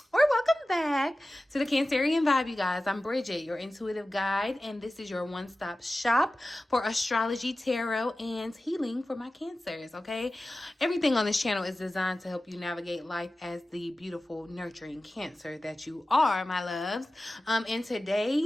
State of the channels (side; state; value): both; normal; correlation 0.96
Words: back to the Cancerian Vibe, you guys. I'm Bridget, your intuitive guide, and this is your one-stop shop for astrology, tarot, and healing for my Cancers, okay? Everything on this channel is designed to help you navigate life as the beautiful, nurturing Cancer that you are, my loves. And